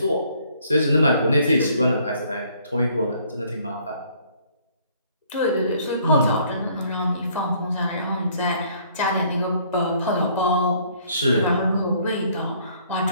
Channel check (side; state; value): both; inverted; correlation -0.62